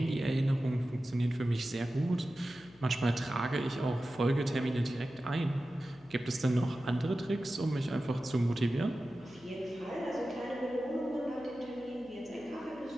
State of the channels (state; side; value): noise; left; hum, 26 dB below the sound